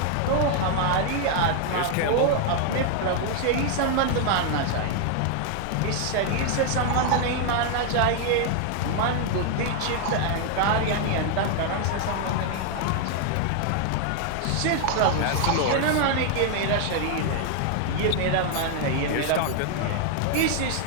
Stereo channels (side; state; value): both; different; correlation 0.00